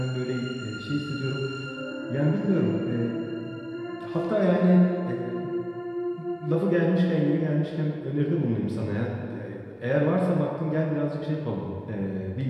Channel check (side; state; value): both; identical; correlation 1.00